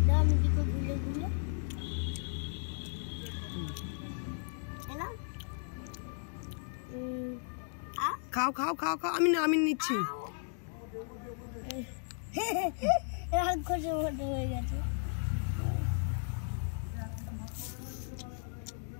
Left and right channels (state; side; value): silent; right; 54 dB below the other